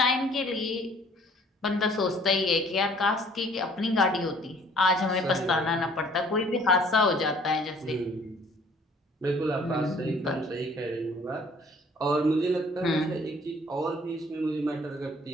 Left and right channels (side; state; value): both; normal; correlation 0.56